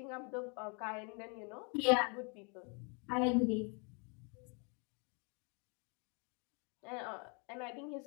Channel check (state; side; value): quieter; right; 35.3 dB